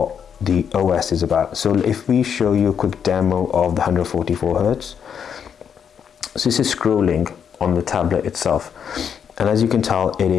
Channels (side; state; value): right; quieter; 7.7 dB